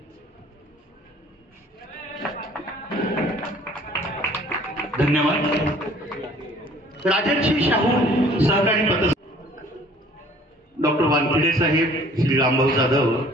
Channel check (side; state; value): both; normal; correlation 0.54